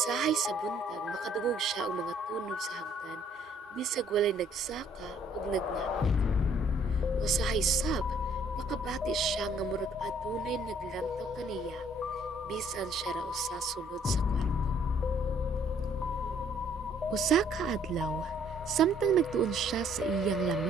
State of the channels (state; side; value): normal; both; correlation 0.62